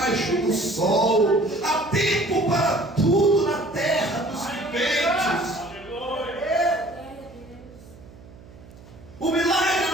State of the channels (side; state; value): right; noise; hum, 21 dB below the sound